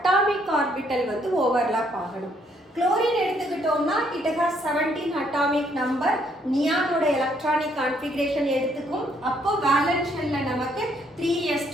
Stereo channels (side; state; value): both; normal; correlation 0.69